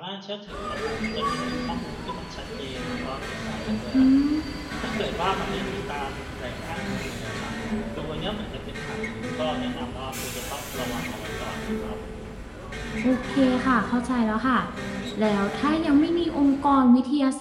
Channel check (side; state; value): both; identical; correlation 1.00